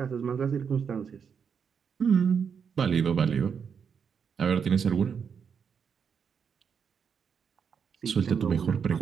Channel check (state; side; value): quieter; left; 6.8 dB